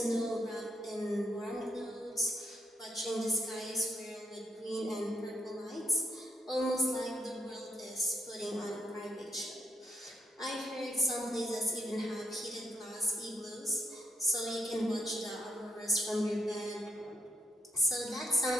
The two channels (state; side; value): normal; both; correlation 0.77